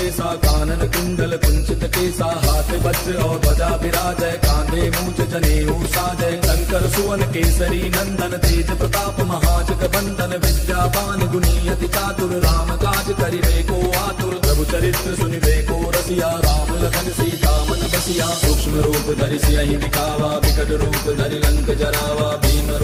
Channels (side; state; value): both; identical; correlation 1.00